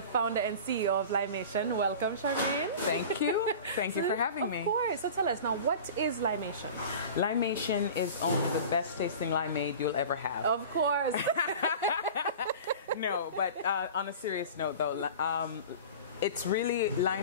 founder and CEO of Limation. Welcome, Charmaine. Thank you. Thank you for having me. Of course. So tell us now, what is Limation? Limation is only the best tasting limeade you'll ever have. Of course. No, but on a serious note, though, it's really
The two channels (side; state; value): both; inverted; correlation -0.37